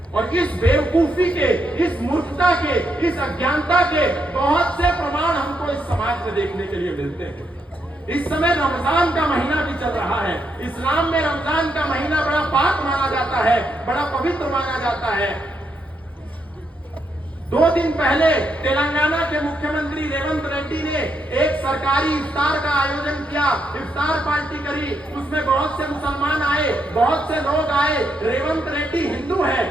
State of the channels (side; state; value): both; normal; correlation 0.79